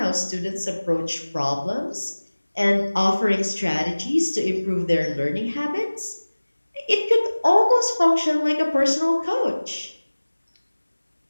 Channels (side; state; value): both; inverted; correlation -1.00